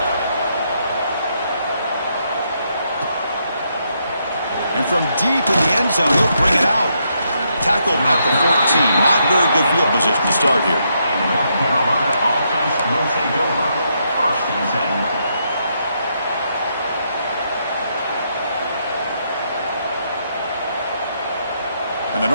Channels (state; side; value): inverted; both; correlation -0.77